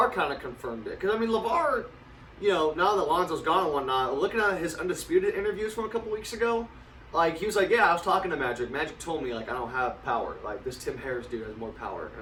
kind of confirmed it because LeVar, now that Lonzo's gone and whatnot, looking at his Undisputed interviews from a couple weeks ago, he was like, yeah, I was talking to Magic. Magic told me I don't have power. This Tim Harris dude has more power,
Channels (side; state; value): both; identical; correlation 1.00